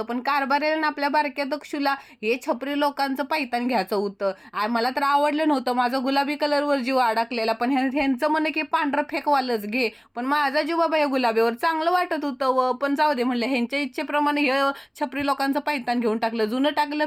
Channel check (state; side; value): identical; both; correlation 1.00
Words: पण कारभारीला आपल्या बारक्या दक्षूला हे छपरी लोकांचं पायतान घ्यायचं होतं. मला तर आवडलं नव्हतं. माझा गुलाबी कलरवर जीव अडकलेला. पण ह्यांचं म्हणे की पांढरं फेकवालच घे. पण माझा जीव बाबा या गुलाबीवर चांगलं वाटत होतं व पण जाऊ दे म्हणलं. ह्यांच्या इच्छेप्रमाणे हे छपरी लोकांचं पायतान घेऊन टाकलं. जुनं टाकलं